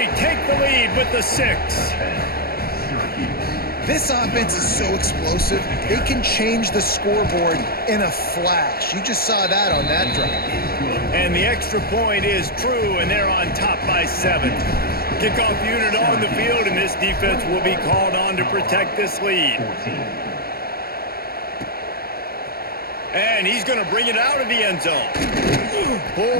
take the lead with the 6. This offense is so explosive, they can change the scoreboard in a flash. You just saw that on that drive. And the extra point is true, and they're on top by 7. Kickoff unit on the field, and this defense will be called on to protect this lead. And he's going to bring it out of the end zone.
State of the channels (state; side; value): late; right; 0.44 ms